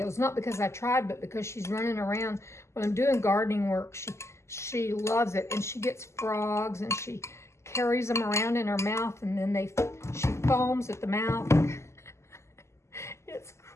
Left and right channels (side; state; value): right; late; 0.13 ms